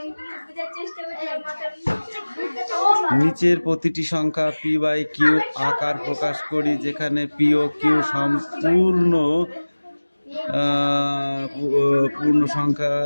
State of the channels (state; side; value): inverted; both; correlation -1.00